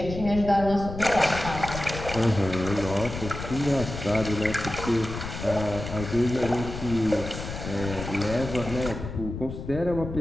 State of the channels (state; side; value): noise; left; rumble, 8 dB below the sound